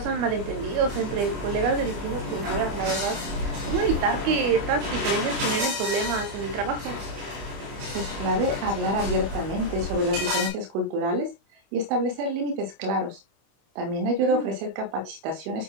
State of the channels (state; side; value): late; left; 25 ms